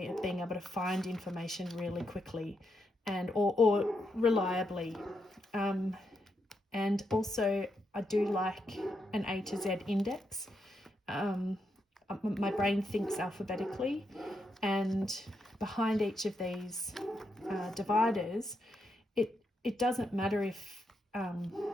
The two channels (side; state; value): both; normal; correlation 0.82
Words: of being able to find information really quickly and or reliably. And also I do like an A to Z index. My brain thinks alphabetically, and behind each of these dividers, it doesn't matter if